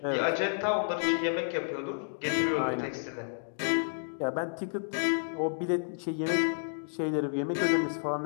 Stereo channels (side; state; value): right; silent; digital silence